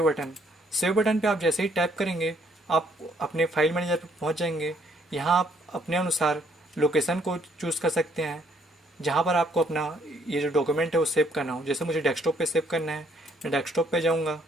बटन। सेव बटन पे आप जैसे ही टैप करेंगे आप अपने फाइल मैनेजर पर पहुँच जाएंगे। यहाँ आप अपने अनुसार लोकेशन को चूज़ कर सकते हैं जहाँ पर आपको अपना ये जो डॉक्यूमेंट है वो सेव करना हो। जैसे मुझे डेस्कटॉप पे सेव करना है, मैं डेस्कटॉप पे जाऊँगा।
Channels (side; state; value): both; normal; correlation 0.67